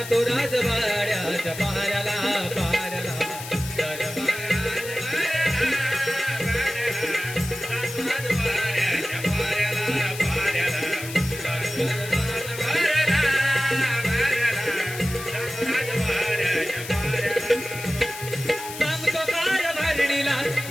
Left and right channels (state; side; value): noise; left; hiss, 11 dB below the sound